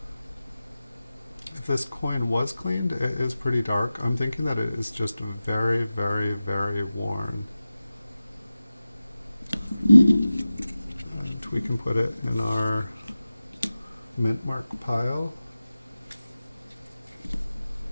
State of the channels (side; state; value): both; inverted; correlation -0.95